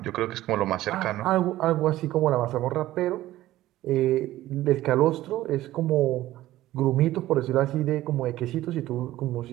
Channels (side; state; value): left; quieter; 15.3 dB